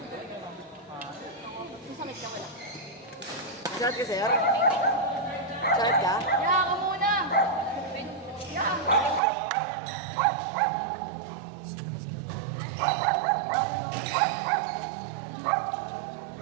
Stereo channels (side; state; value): left; drops out; at 9.2 s